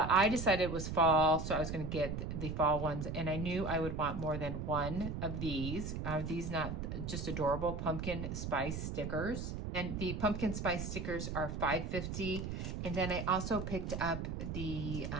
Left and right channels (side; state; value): right; noise; rumble, 4 dB below the sound